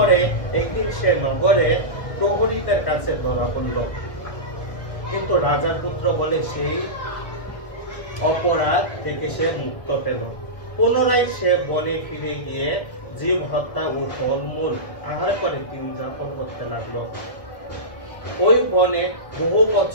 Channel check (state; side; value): late; right; 1.3 ms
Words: একদিন সে নগরে প্রহরীদের কাছে ধরা পড়ল, কিন্তু রাজার পুত্র বলে সেই অপরাধ থেকে সে মুক্ত পেল। পুনরায় সে বনে ফিরে গিয়ে জীব হত্যা ও ফলমূল আহার করে দিন যাপন করতে লাগলো। ওই বনে বহু